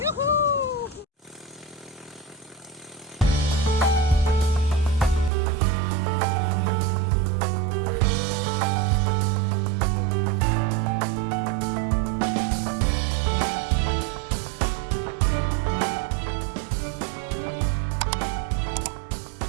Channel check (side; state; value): left; drops out; at 5.3 s